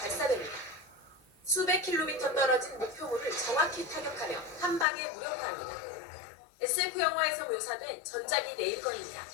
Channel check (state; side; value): drops out; right; at 4.9 s